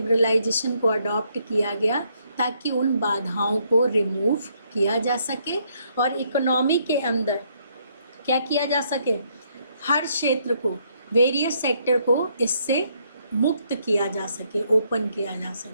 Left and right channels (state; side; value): inverted; both; correlation -0.72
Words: को अडॉप्ट किया गया ताकि उन बाधाओं को रिमूव किया जा सके और इकोनॉमी के अंदर क्या किया जा सके, हर क्षेत्र को, वेरियस सेक्टर को इससे मुक्त किया जा सके, ओपन किया जा